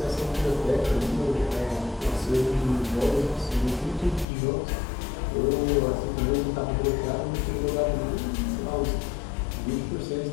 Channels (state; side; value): drops out; right; at 4.2 s